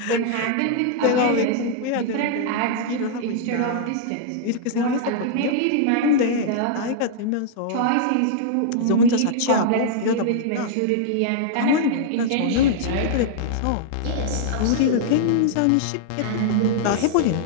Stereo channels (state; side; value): different; both; correlation -0.01